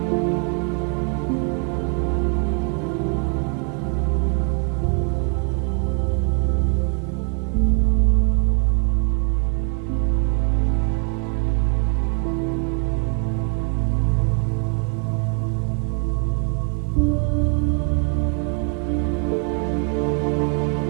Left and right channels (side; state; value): left; quieter; 39.8 dB